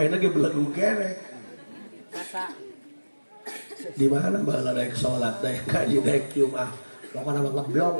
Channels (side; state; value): both; inverted; correlation -1.00